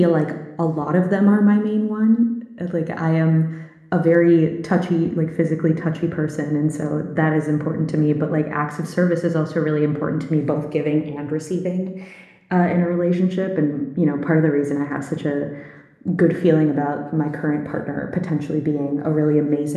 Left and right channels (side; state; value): both; identical; correlation 1.00